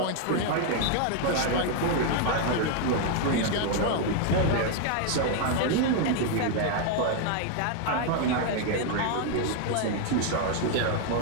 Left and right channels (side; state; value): both; different; correlation 0.00